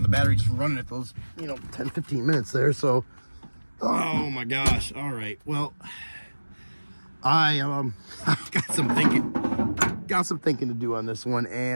the battery just from running it those, you know, 10, 15 minutes there. So, oh my gosh. All right. Well, I got some thinking to do on this one,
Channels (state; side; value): inverted; both; correlation -1.00